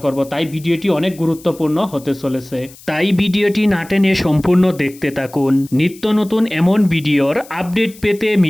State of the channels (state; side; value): noise; left; hiss, 22 dB below the sound